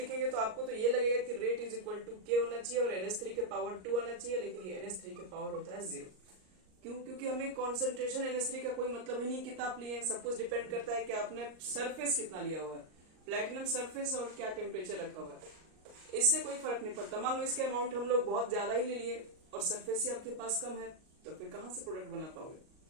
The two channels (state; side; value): late; left; 38 ms